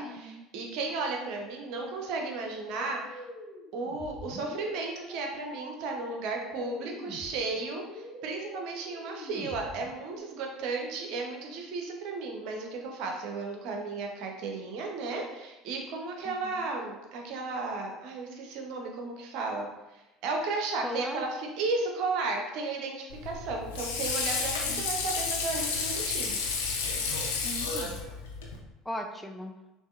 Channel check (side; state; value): both; normal; correlation 0.25